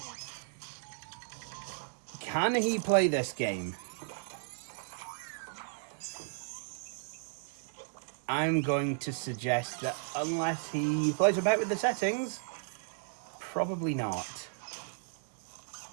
Can he play this game? I'm going to suggest that unless he plays about with the settings, probably not.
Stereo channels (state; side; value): silent; left; digital silence